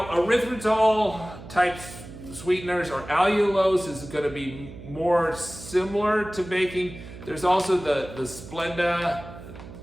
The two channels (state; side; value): noise; right; hum, 14 dB below the sound